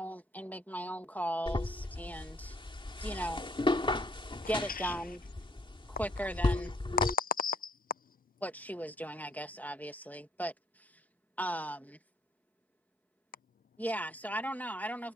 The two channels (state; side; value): normal; both; correlation 0.63